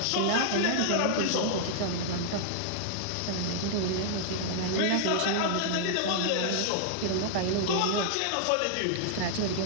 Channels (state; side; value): different; both; correlation -0.01